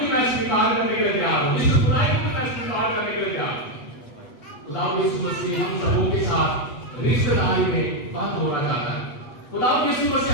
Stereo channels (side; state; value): right; late; 8.2 ms